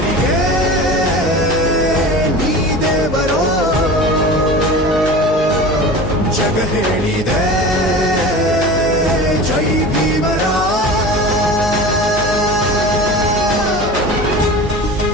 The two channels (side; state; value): both; normal; correlation 0.34